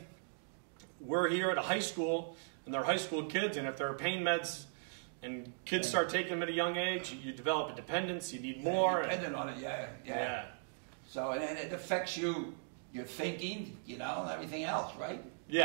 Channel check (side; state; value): left; silent; digital silence